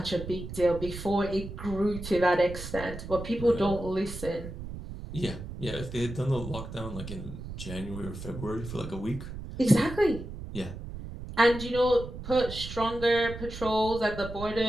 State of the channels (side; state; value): right; noise; rumble, 10 dB below the sound